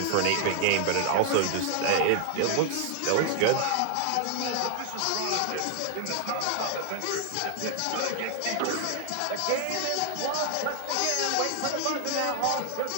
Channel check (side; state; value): both; different; correlation 0.00